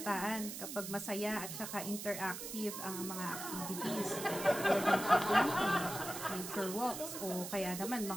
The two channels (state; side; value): noise; right; hiss, 7 dB below the sound